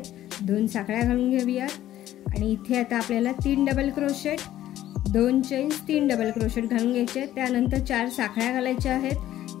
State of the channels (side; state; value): right; quieter; 13.1 dB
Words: 2 साखळ्या घालून घेऊयात आणि इथे आता आपल्याला 3 double crochet, 2 chains, 3 double crochet घालून घ्यायचे आहेत। त्यानंतर 4 साखळ्या घालायच्या आहेत,